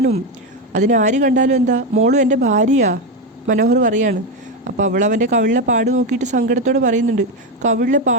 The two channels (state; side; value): normal; both; correlation 0.11